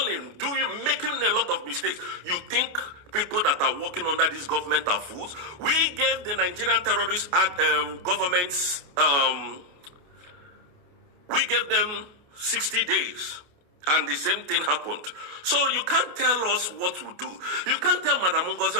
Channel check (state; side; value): late; left; 28 ms